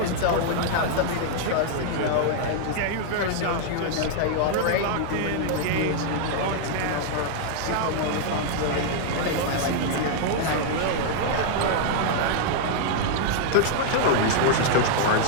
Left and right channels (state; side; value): different; both; correlation 0.00